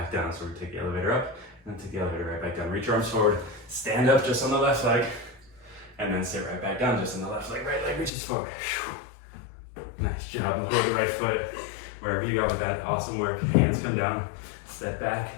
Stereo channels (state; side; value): drops out; right; at 8.1 s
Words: down. So we're going to take the elevator up and then take the elevator right back down. Reach your arms forward. Stand up just on the left leg and then sit right back down just on the left leg. Right leg reaches forward. Nice job. Hold the right foot wherever you go with that. Awesome work. Hands come down. Step back.